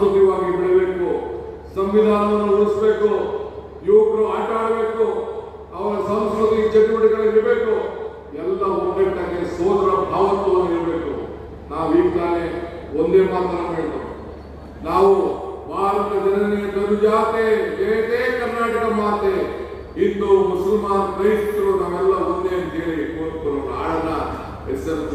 ಬೆಳಬೇಕು, ಸಂವಿಧಾನವನ್ನು ಉಳಿಸಬೇಕು, ಯುವಕರು ಆಟ ಆಡಬೇಕು, ಅವರ ಸಾಂಸ್ಕೃತಿಕ ಚಟುವಟಿಕೆಗಳಿರಬೇಕು, ಎಲ್ಲ ಒಗ್ಗಟ್ಟಾಗಿ ಸೋದರ ಭಾವತ್ವವನ್ನು ಇರಬೇಕು. ನಾವು ಈಗ ತಾನೇ ಒಂದೇ ಮಾತನ್ನು ಹೇಳ್ತೇವೆ, ನಾವು ಭಾರತ ಜನನಿಯ ತನುಜಾತೆ ಜಯತೆ ಕರ್ನಾಟಕ ಮಾತೆ, ಹಿಂದೂ ಮುಸಲ್ಮಾನ್ ಕ್ರೈಸ್ತರು ನಾವೆಲ್ಲ ಒಂದೇ ಅಂತ ಹೇಳಿ ಆಡನ ಎಸ್.ಎಂ.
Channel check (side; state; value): both; identical; correlation 1.00